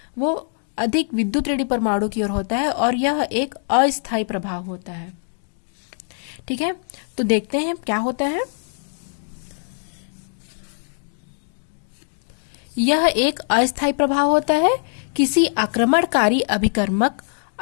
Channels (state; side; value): silent; right; 59 dB below the other